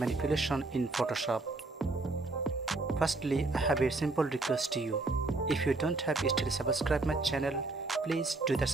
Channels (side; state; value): left; quieter; 3.3 dB